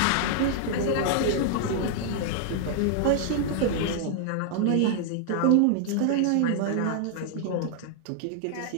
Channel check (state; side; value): different; both; correlation -0.01